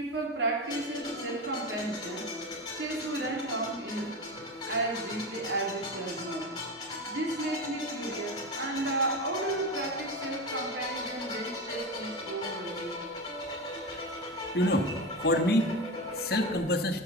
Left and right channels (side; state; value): both; normal; correlation 0.22